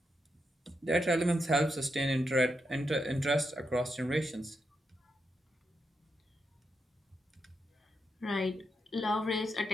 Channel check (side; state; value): both; normal; correlation 0.83